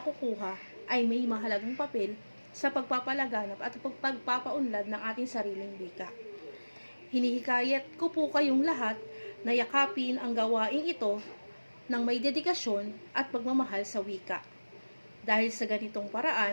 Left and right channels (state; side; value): inverted; both; correlation -1.00